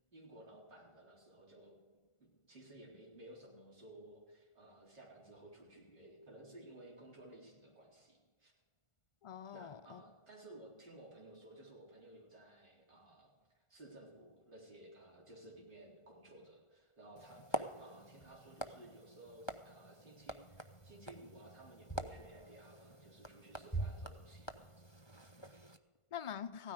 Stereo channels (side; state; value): right; late; 1.2 ms